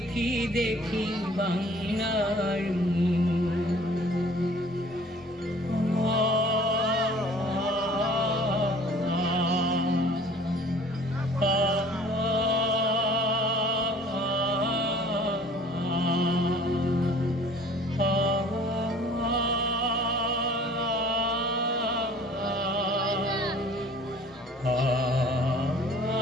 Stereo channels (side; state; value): both; normal; correlation 0.51